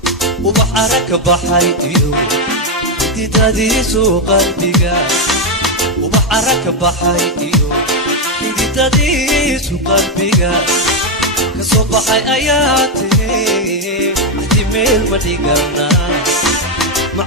وبحرك بحيديو تديسو قلبيغا وبحرك بحيديو تديسو قلبيغا كصبحي اياتي احتمال مديغنا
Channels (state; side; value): normal; both; correlation 0.05